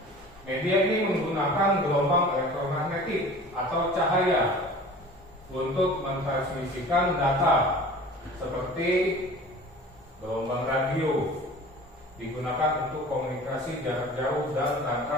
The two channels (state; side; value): normal; both; correlation 0.42